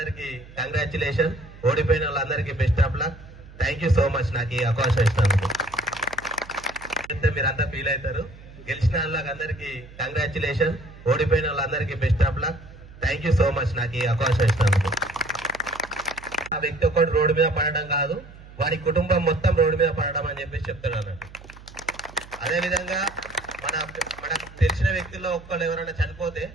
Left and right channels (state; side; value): noise; right; hum, 19 dB below the sound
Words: కంగ్రాచులేషన్, ఓడిపోయిన వాళ్ళందరికీ best of luck. Thank you so much నాకు ఈ అవకాశం ఇచ్చినందుకు. మీరంతా ఫీల్ అవుతారు. గెలిచిన వాళ్ళందరికీ కంగ్రాచులేషన్, ఓడిపోయిన వాళ్ళందరికీ best of luck. Thank you so much నాకు ఈ అవకాశం ఇచ్చినందుకు. ఆ వ్యక్తి ఒక్కడు రోడ్డు మీద పడడం కాదు, వారి కుటుంబం మొత్తం రోడ్డు మీద పడడం అని చెప్పేసి చెప్తాడు అన్నట్టు. అదేవిధంగా మనకు తెలిసిన వ్యక్తుల్లో ఒక్కళ్ళు ఎవరైనా చనిపోతే